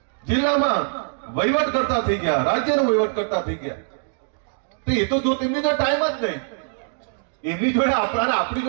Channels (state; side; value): silent; left; digital silence